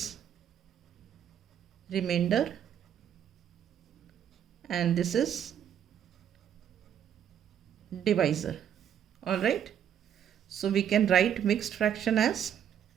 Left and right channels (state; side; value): quieter; left; 9.3 dB